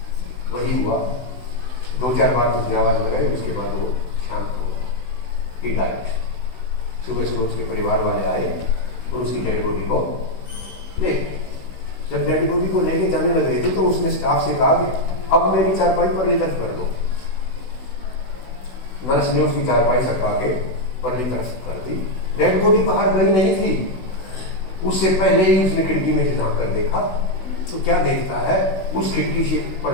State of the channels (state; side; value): late; right; 16 ms